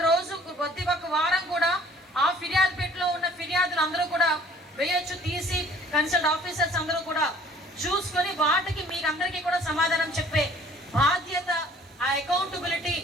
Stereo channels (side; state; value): both; normal; correlation 0.54